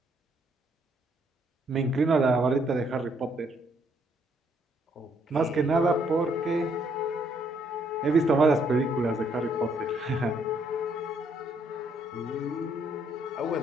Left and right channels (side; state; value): both; normal; correlation 0.70